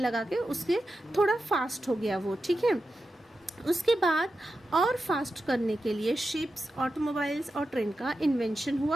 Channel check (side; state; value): both; normal; correlation 0.90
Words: लगा के उसके थोड़ा फास्ट हो गया वो, ठीक है। उसके बाद और फास्ट करने के लिए शिप्स, ऑटोमोबाइल्स और ट्रेन का इन्वेंशन